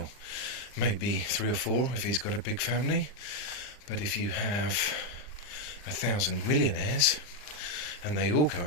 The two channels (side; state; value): right; late; 39 ms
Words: maybe 3 or 4 if he's got a big family. But if you have 1,000 millionaires and they all go